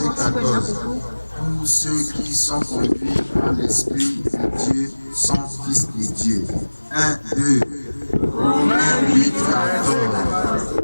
14. Tous ceux qui sont conduits par l'Esprit de Dieu sont fils de Dieu. 1, 2. Romains 8, 14.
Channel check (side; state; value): both; inverted; correlation -1.00